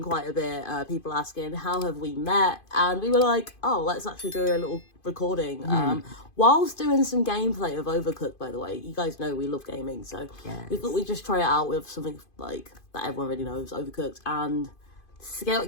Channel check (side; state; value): right; late; 2.5 ms